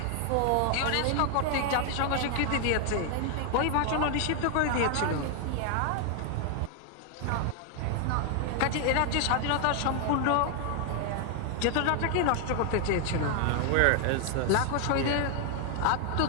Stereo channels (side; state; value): both; different; correlation 0.00